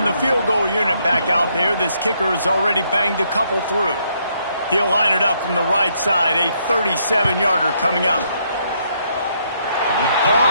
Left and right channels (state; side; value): inverted; both; correlation -0.73